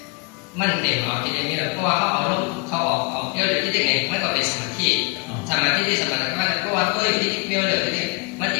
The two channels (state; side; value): quieter; right; 30.5 dB